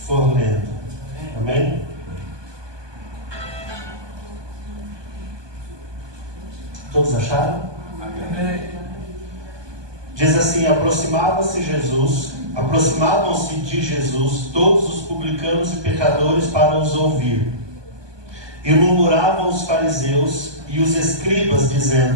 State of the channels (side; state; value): left; late; 1.2 ms